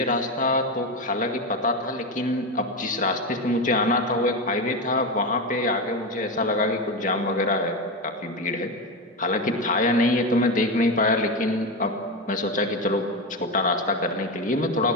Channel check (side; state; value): both; normal; correlation 0.15